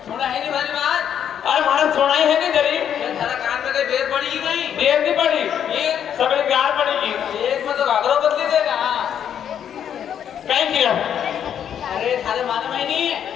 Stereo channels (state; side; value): quieter; right; 9.0 dB